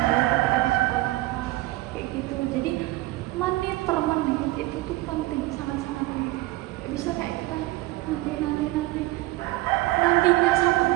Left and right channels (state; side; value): quieter; left; 19.1 dB